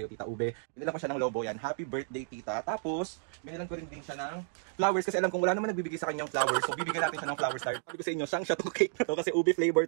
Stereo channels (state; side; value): silent; left; digital silence